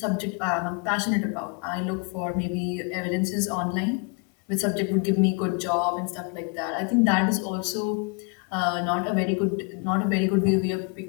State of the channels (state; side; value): quieter; right; 34.2 dB